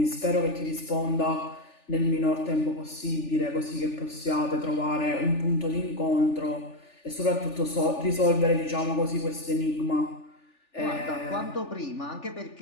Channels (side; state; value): right; late; 3.4 ms